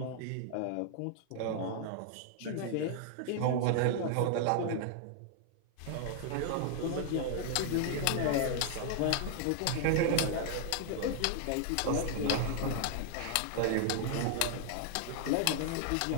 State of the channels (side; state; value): both; different; correlation 0.00